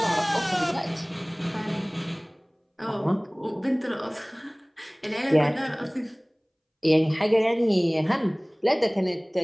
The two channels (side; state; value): both; identical; correlation 1.00